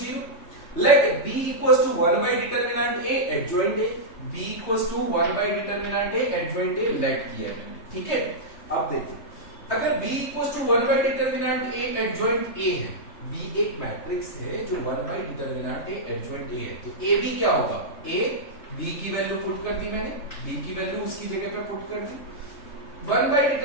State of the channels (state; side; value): late; right; 3.3 ms